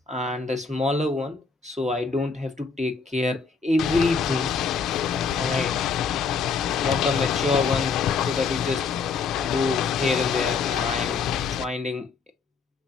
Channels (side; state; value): right; quieter; 5.0 dB